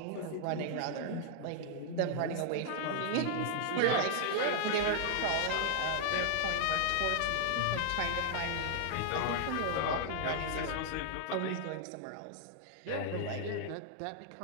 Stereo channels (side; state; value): both; different; correlation 0.00